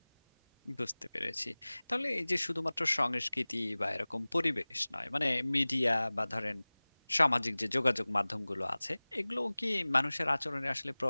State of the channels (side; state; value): both; inverted; correlation -1.00